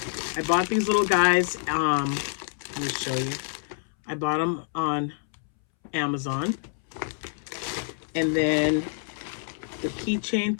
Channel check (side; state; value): right; silent; 60 dB below the other